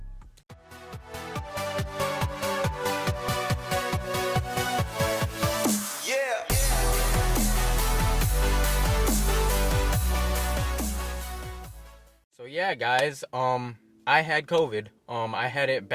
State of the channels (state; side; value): identical; both; correlation 1.00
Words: So yeah, guys, I had COVID. I had it